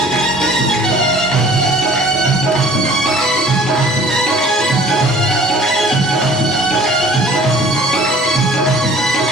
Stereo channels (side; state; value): both; normal; correlation 0.50